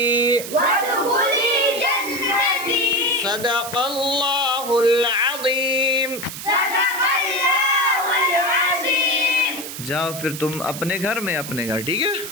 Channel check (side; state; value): right; noise; hiss, 9 dB below the sound